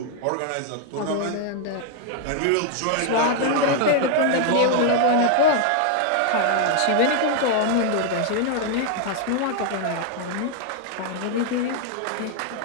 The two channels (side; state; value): both; different; correlation 0.00